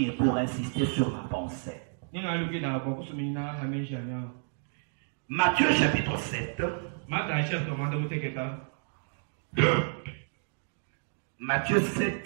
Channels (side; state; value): left; silent; digital silence